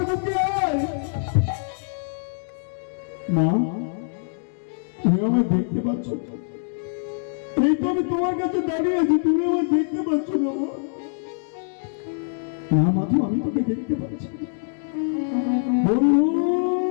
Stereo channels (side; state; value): right; silent; digital silence